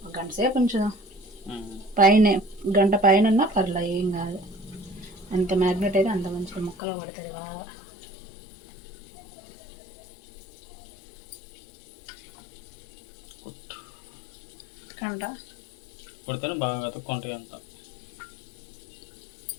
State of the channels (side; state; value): right; drops out; at 6.8 s